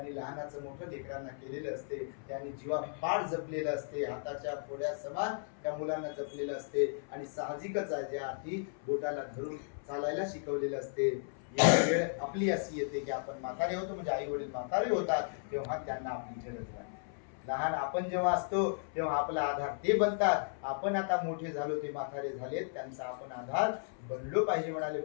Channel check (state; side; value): silent; right; 54 dB below the other